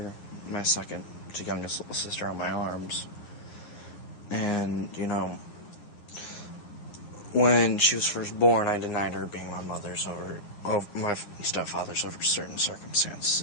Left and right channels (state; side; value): late; right; 9.7 ms